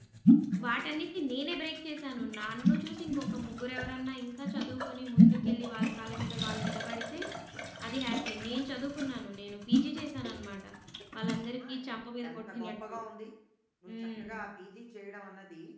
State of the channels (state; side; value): identical; both; correlation 1.00